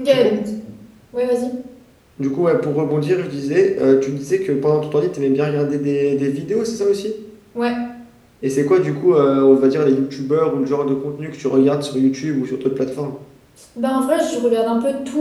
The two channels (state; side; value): identical; both; correlation 1.00